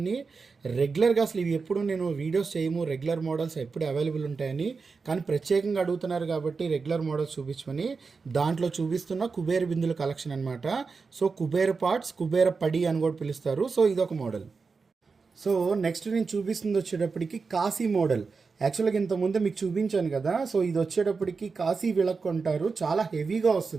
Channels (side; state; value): left; quieter; 4.7 dB